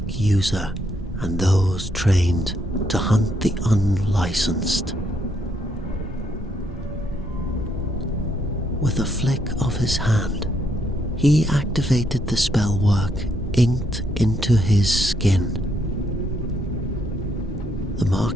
user and those trained to hunt the unlicensed. With a flick of his hand, he activated the spellwork inked into his skin. The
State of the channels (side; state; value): both; normal; correlation 0.74